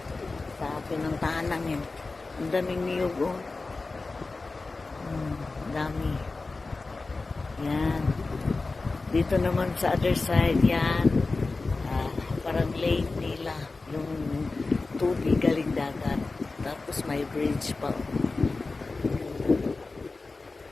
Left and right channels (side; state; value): right; quieter; 3.6 dB